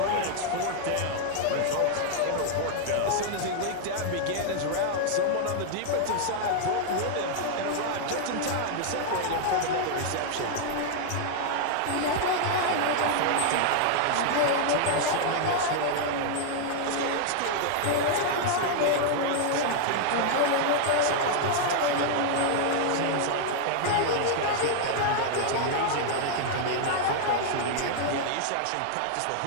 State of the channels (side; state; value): both; different; correlation 0.00